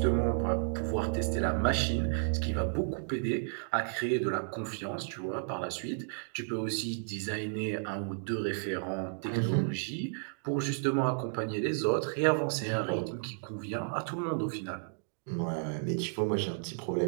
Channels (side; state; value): left; silent; digital silence